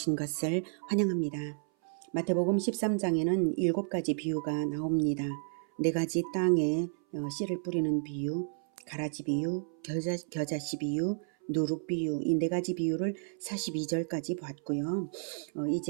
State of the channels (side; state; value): left; silent; 57 dB below the other